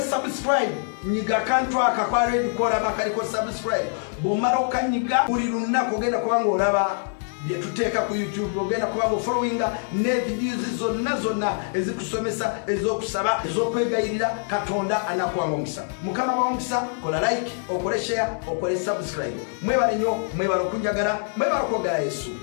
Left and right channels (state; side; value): silent; right; 60 dB below the other